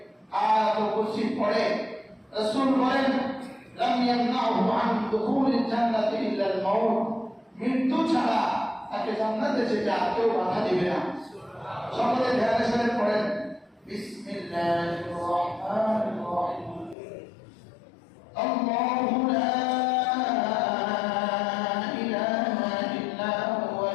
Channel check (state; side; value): drops out; right; at 16.9 s